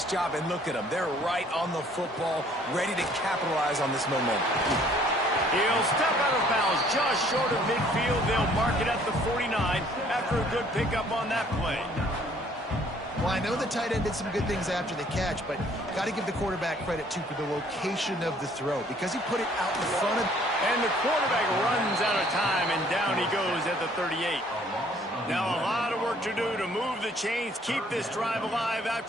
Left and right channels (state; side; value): normal; both; correlation 0.59